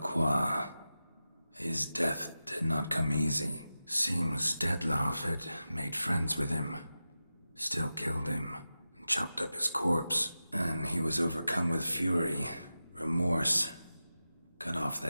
His death did not come easy. Seems Dettlaff had made friends with him. Still killed him, and chopped up his corpse. And he was overcome with fury, remorse. Cut off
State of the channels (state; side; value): inverted; both; correlation -0.93